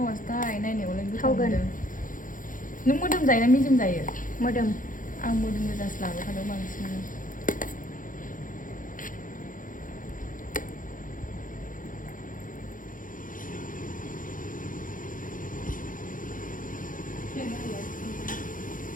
नायनायावलाय थावगोन नों मोदोम जायो ना मेजेम जायो मोदोम आं मोदोम गोजासो लाबाय थादों बांसिनानो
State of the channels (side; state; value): right; late; 0.39 ms